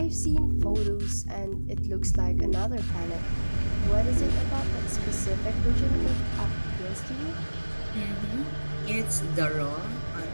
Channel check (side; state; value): both; inverted; correlation -1.00